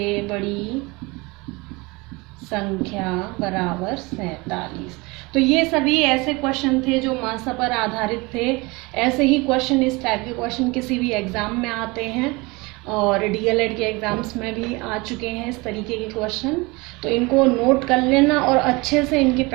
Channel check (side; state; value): left; quieter; 25.0 dB